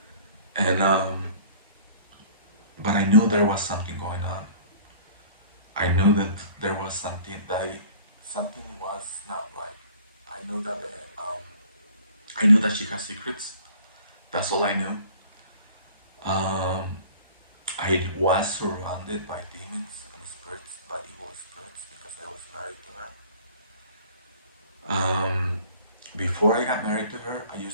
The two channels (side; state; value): both; inverted; correlation -0.49